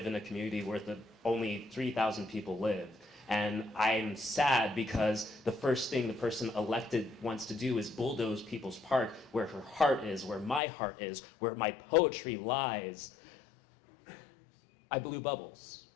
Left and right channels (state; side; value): drops out; right; at 10.6 s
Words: in a community where only 3,000 people live. And I'm sad because the first thing the person elected wants to do is bulldoze People's Park, where her heart is, where my heart is, where my poetry lies. I blew bubbles